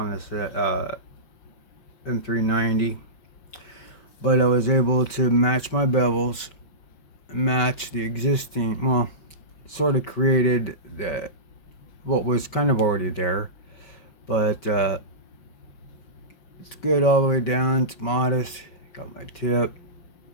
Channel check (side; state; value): right; late; 5.2 ms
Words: this M390, but I was able to match my bevels, match the existing, well, sort of created what was kind of already there, but it's good all the way down. It's modest. Got my tip.